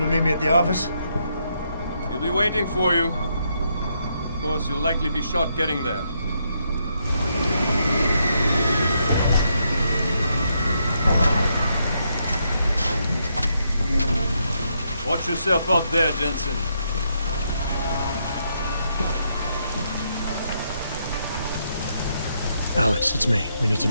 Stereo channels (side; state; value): both; inverted; correlation -0.78